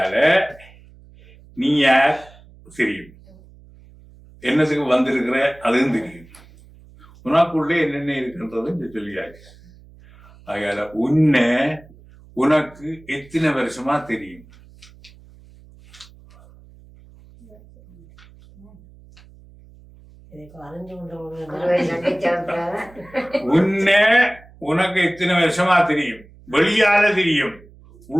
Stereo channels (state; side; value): noise; right; hum, 24 dB below the sound